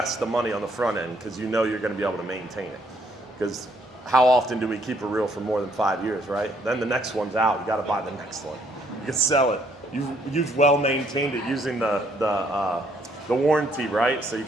the money on the front end because you know you're going to be able to maintain it. Because how often do we keep a reel for more than 5 years, right? Then the next one's out. You got to buy the next one. You can sell it. You've well maintained it using the warranty, right? So you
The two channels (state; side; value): normal; both; correlation 0.68